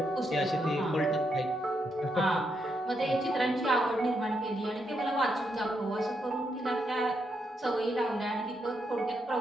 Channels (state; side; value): normal; both; correlation 0.80